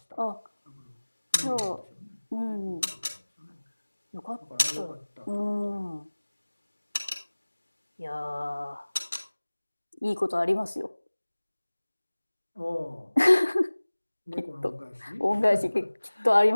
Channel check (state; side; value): inverted; both; correlation -1.00